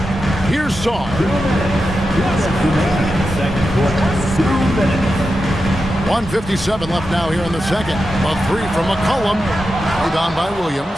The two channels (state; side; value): normal; both; correlation 0.90